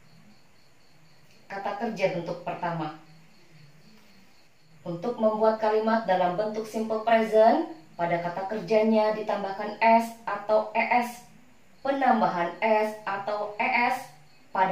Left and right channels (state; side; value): identical; both; correlation 1.00